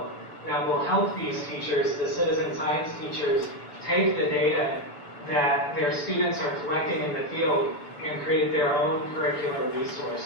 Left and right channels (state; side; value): late; right; 6.9 ms